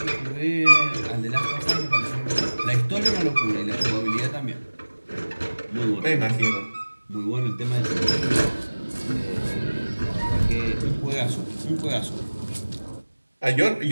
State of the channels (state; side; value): inverted; both; correlation -1.00